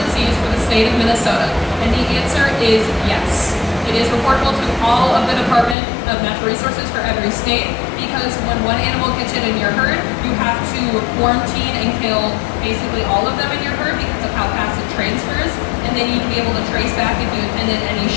disease for the state of Minnesota? And the answer is yes. It is reportable to all of the Department of Natural Resources for every state because when one animal gets it in your herd, you have to quarantine and kill basically all of them in your herd because of how fast it transfers. And they need to be able to trace back if you attended any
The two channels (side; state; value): right; drops out; at 5.8 s